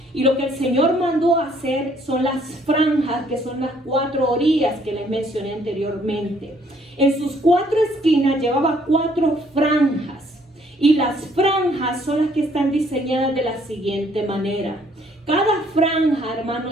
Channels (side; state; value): both; normal; correlation 0.64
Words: Y lo que el Señor mandó hacer son las franjas, que son las 4 orillas que les mencioné anteriormente. En sus 4 esquinas llevaba 4 franjas. Y las franjas son las que están diseñadas de la siguiente manera. Cada franja,